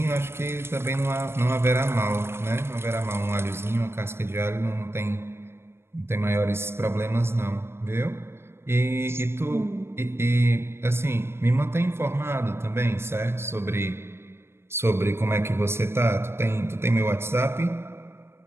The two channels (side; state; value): left; late; 0.12 ms